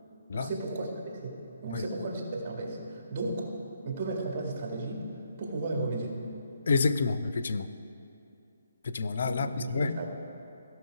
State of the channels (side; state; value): both; inverted; correlation -0.75